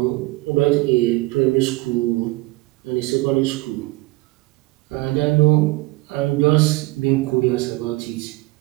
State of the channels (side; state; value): left; quieter; 21.5 dB